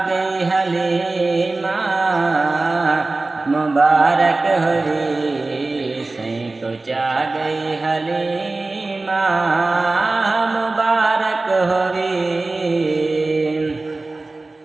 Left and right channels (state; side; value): quieter; left; 3.3 dB